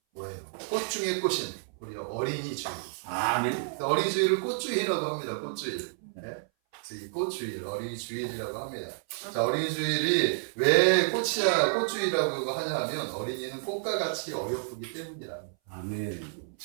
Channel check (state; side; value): silent; left; 58 dB below the other